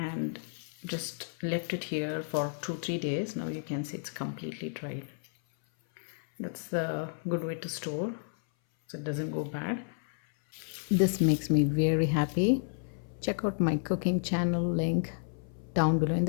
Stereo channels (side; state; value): right; silent; 57 dB below the other